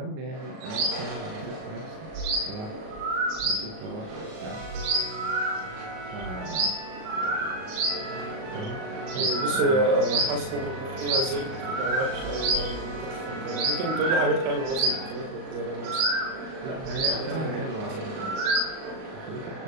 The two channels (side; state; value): left; late; 38 ms